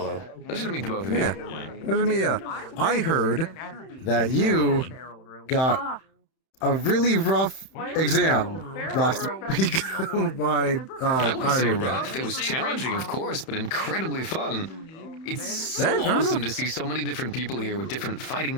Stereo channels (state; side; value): late; right; 31 ms